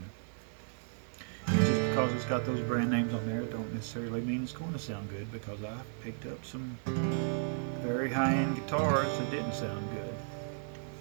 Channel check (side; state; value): left; silent; digital silence